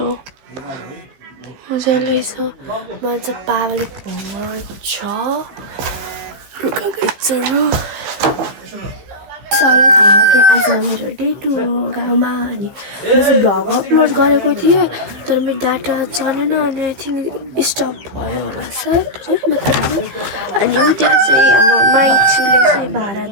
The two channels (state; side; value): late; left; 15 ms